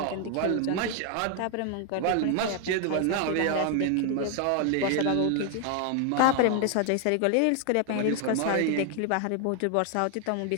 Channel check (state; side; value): different; both; correlation 0.00